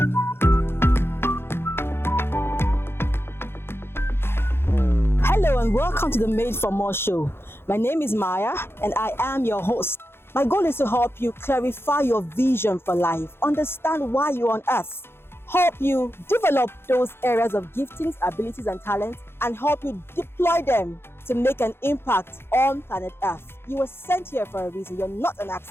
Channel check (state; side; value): late; right; 0.11 ms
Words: Hello and welcome to the Made for More show. My name is Maya and I am your host. My goal is to help you clarify your vision for life, understand why you're on earth, help you develop those areas of giftings, abilities and talents, and help you deploy them to make an impact on planet Earth. You were sent here for a reason. You're not an